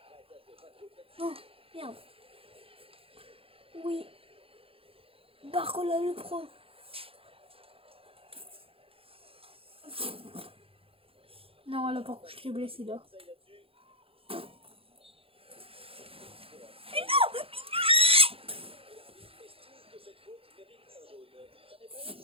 Oh, merde. Oui. Barcola le pro. Non, là par contre je l'ai blessé là. Mais non.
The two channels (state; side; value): late; left; 0.27 ms